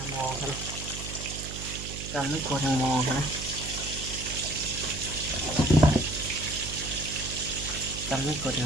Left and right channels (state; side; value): noise; right; hum, 9 dB below the sound